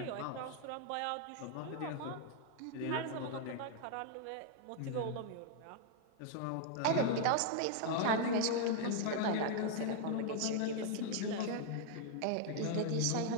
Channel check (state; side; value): different; both; correlation 0.00